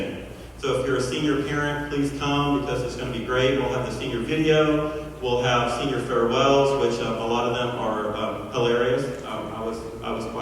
So if you're a senior parent, please come, because it's going to be great. We'll have the senior video. We'll have senior farewells, which a lot of them are hilarious. I was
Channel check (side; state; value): both; identical; correlation 1.00